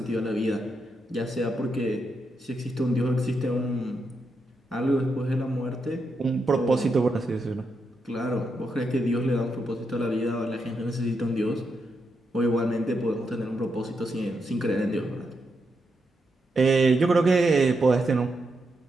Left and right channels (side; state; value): both; normal; correlation 0.83